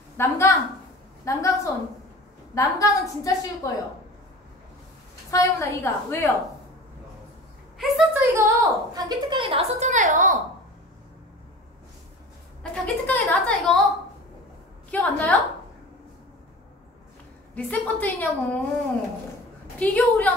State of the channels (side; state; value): both; normal; correlation 0.38